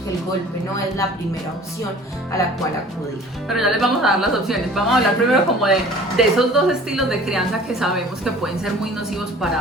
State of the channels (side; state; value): both; normal; correlation 0.47